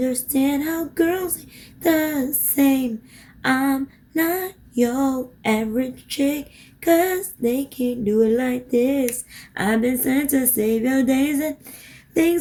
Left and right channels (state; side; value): identical; both; correlation 1.00